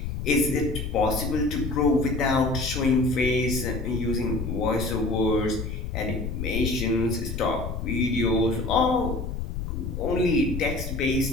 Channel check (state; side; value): noise; left; rumble, 4 dB below the sound